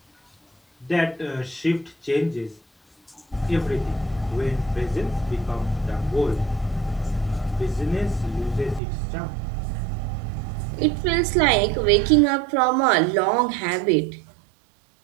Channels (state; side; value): drops out; left; at 8.8 s